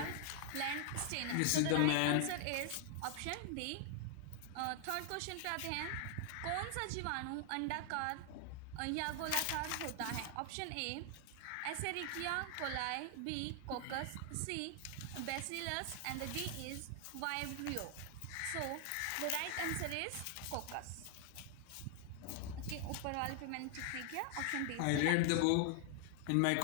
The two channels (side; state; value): both; different; correlation 0.00